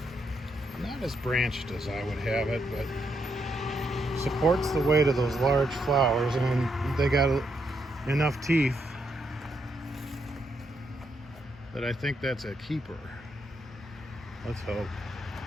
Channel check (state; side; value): normal; both; correlation 0.79